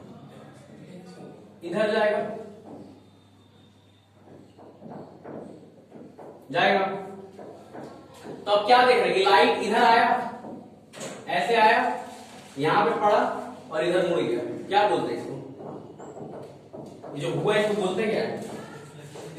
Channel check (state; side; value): identical; both; correlation 1.00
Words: इधर जाएगा, जाएगा। तो अब क्या देख रहे हैं कि लाइट इधर आया, ऐसे आया, यहां पे पड़ा और इधर मुड़ गया। क्या बोलते हैं इसको? ये जो हुआ है इसको बोलते हैं क्या?